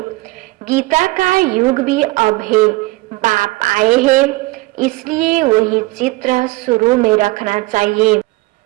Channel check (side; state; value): left; quieter; 21.8 dB